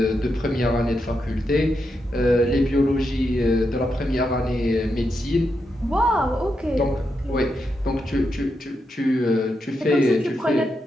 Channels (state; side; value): normal; both; correlation 0.84